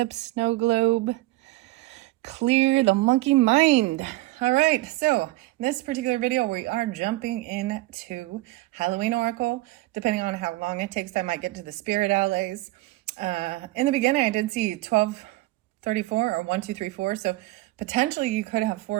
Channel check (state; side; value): quieter; left; 19.1 dB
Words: snow globe clear the monkey mind. All right, so in this particular video, we are jumping into Halloween Oracle. Depending on how long it takes, I might get to the spirit allies. In the beginning, I did see 1234 or 1234, so potentially you could have